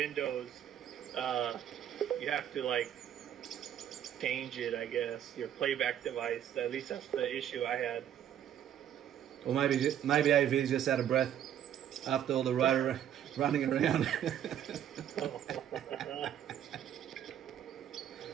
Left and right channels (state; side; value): quieter; left; 10.4 dB